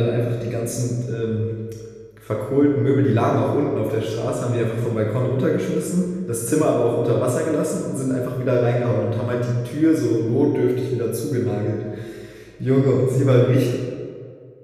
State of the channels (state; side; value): identical; both; correlation 1.00